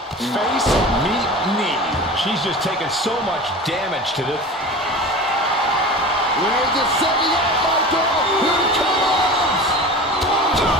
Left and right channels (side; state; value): both; normal; correlation 0.34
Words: Face, meet, knee. She's just taken so much damage to this. Reigns is setting up, Michael. Here it comes.